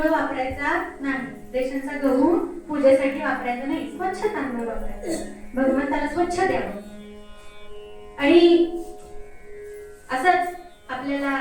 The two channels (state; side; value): identical; both; correlation 1.00